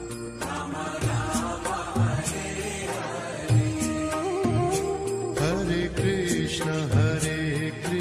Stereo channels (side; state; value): both; identical; correlation 1.00